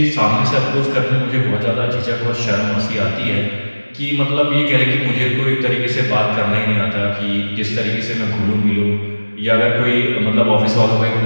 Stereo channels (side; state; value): both; inverted; correlation -1.00